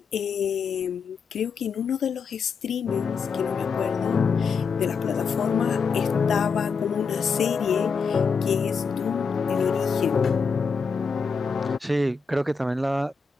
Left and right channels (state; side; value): quieter; right; 5.4 dB